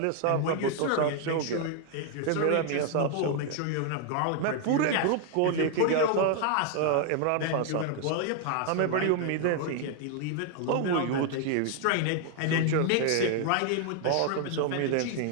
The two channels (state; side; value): different; both; correlation 0.00